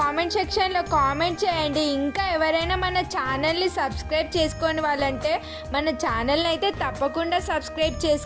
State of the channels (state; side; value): identical; both; correlation 1.00